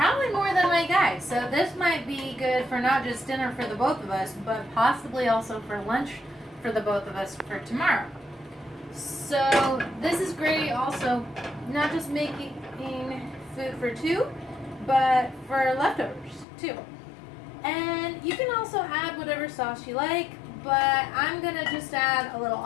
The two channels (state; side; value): drops out; right; at 16.4 s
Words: more than my guy. So this might be good for not just dinner for the both of us, but possibly also for lunch for the both of us for tomorrow. So this is great also, not just making food for two, but for leftovers too. And you can also add whatever sauce you like, but I'm gonna just add a little